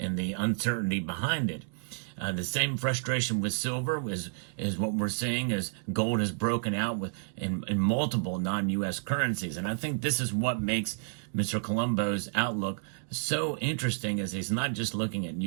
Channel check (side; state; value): left; silent; digital silence